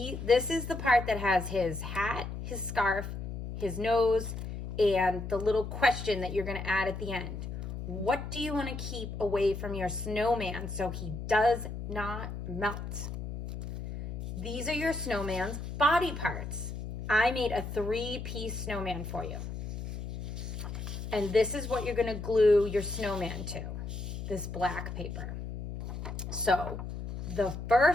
is the part that has his hat, his scarf, his nose, and the little question that you're going to add at the end. What do you want to keep away from your snowman so he does not melt? These are your snowman's body parts. I made a 3-piece snowman for you. And this is what you're going to glue your snowman to, this black paper. So the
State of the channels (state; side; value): noise; left; hum, 6 dB below the sound